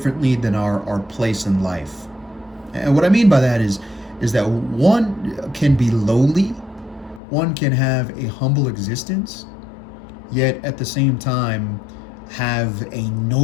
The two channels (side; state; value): right; drops out; at 7.2 s